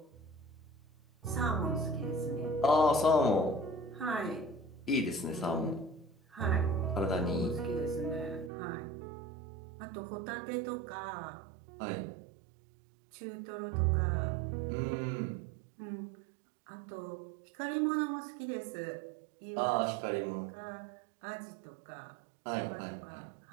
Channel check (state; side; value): drops out; left; at 8.5 s